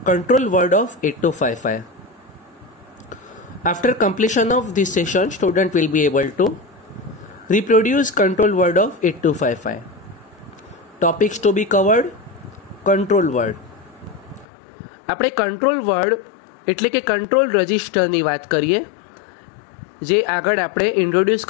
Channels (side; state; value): right; drops out; at 14.5 s